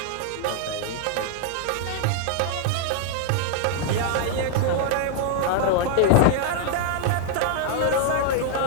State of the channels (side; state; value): both; different; correlation 0.00